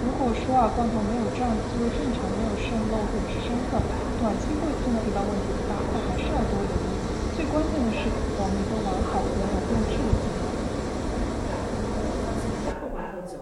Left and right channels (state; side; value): identical; both; correlation 1.00